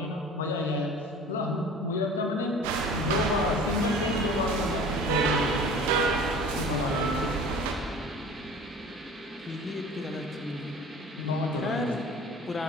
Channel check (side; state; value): both; normal; correlation 0.42